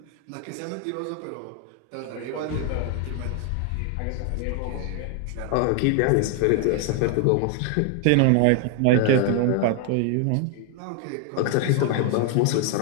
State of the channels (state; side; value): different; both; correlation 0.00